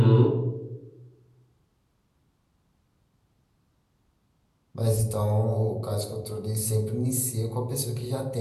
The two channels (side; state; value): both; identical; correlation 1.00